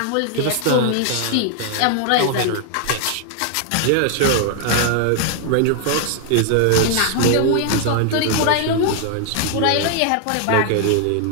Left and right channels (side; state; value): both; different; correlation 0.00